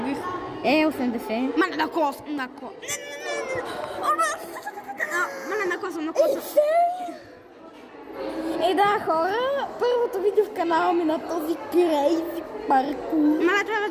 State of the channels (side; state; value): both; identical; correlation 1.00